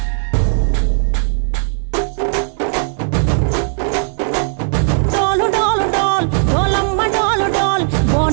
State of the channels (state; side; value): silent; left; digital silence